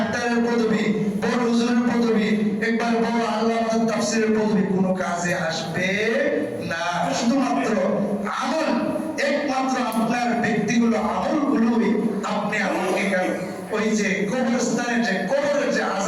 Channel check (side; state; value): both; identical; correlation 1.00